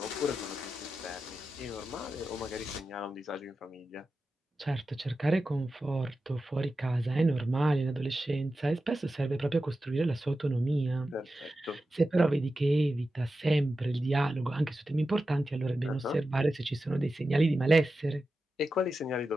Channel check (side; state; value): both; normal; correlation 0.92